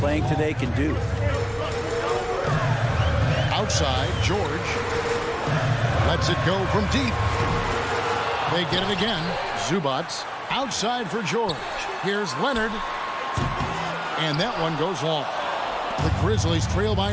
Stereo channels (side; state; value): both; identical; correlation 1.00